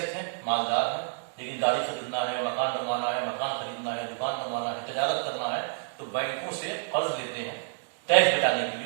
ہیں، مالدار ہیں، لیکن گاڑی خریدنا ہے، مکان بنوانا ہے، مکان خریدنا ہے، دکان بنوانا ہے، تجارت کرنا ہے، تو بینکوں سے قرض لیتے ہیں ٹیکس بچانے کے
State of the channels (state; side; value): silent; left; digital silence